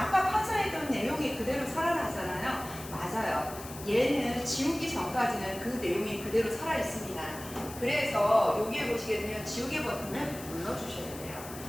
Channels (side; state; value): left; noise; hiss, 14 dB below the sound